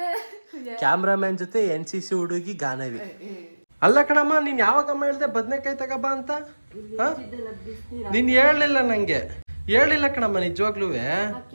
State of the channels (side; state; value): both; inverted; correlation -1.00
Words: ಕ್ಯಾಮ್ರಾಮನ್ ಜೊತೆ NCC ಹುಡುಗಿ ಗಾನವಿ. ಅಲ್ಲ ಕಣಮ್ಮ, ನೀನ್ ಯಾವಾಗಮ್ಮ ಹೇಳ್ದೆ ಬದನೆಕಾಯಿ ತಗೋಬ ಅಂತ? ನೀನ್ ಹೇಳಲಿಲ್ಲ ನಂಗೆ, ಹೇಳಿಲ್ಲ ಕಣಮ್ಮ ನಿಜವಾಗ್ಲೂ.